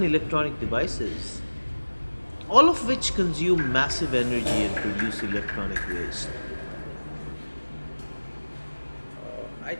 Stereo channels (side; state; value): both; inverted; correlation -1.00